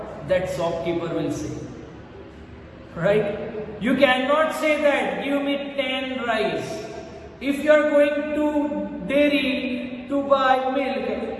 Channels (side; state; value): both; identical; correlation 1.00